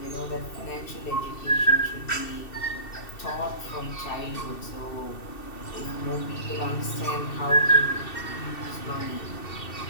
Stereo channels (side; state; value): right; late; 2.7 ms